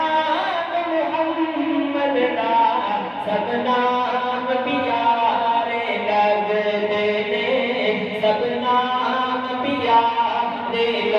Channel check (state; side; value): identical; both; correlation 1.00